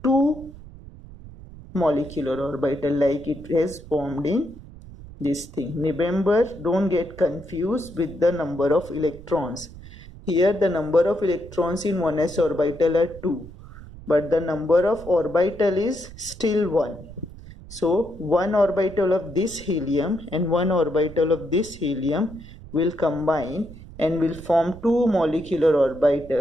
two molecular orbital like it has formed in this thing. Remember, don't get confused with the number of electrons. Here the number of electrons in 1s orbital are 2, but the number of orbital is still 1. So one orbital of this helium and one orbital of this helium will combine and will form two molecular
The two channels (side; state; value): right; noise; rumble, 17 dB below the sound